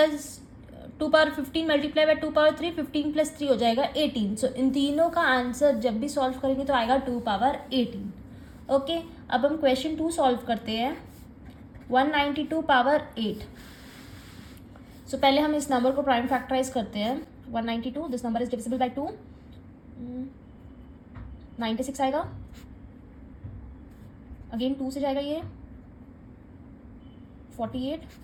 2⁻15 multiply by 2⁻3, 15 + 3 हो जाएगा 18। सो इन तीनों का आंसर जब भी सॉल्व करेंगे तो आएगा 2⁻18। ओके, अब हम क्वेश्चन 2 सॉल्व करते हैं। 192⁻8। सो पहले हम इस नंबर को प्राइम फैक्टराइज करते हैं। 192, this number is divisible by 2, 96 आएगा। अगेन 2 से जाएगा ये 48,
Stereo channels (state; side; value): identical; both; correlation 1.00